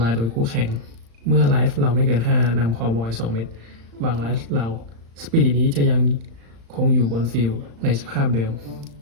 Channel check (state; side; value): late; left; 35 ms